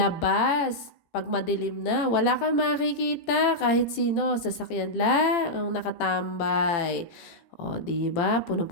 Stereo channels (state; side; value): late; right; 18 ms